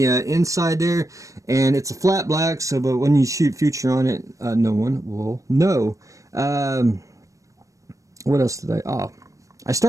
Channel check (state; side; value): late; left; 0.16 ms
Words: inside there, and it's a flat black, so but when you shoot Future on it, no one will know. What else did I